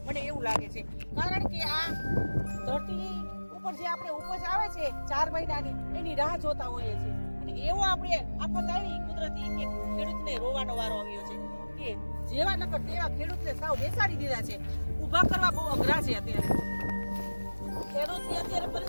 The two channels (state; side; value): inverted; both; correlation -1.00